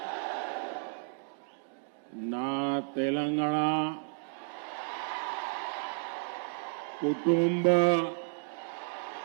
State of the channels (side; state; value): left; silent; digital silence